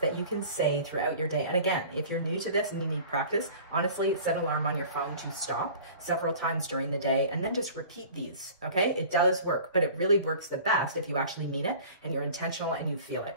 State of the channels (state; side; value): inverted; both; correlation -0.43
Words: you can say throughout your day. And again, if you're new to this and you need practice, honestly, set an alarm on your phone to stop several times during the day and then just repeat these, okay? It does work, but it really works the best if you actually mean it and you're intentional and you feel